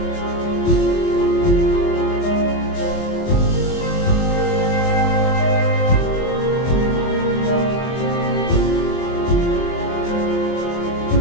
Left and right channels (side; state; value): right; late; 23 ms